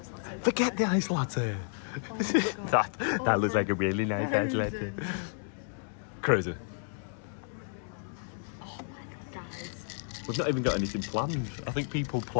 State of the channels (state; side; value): silent; right; 57 dB below the other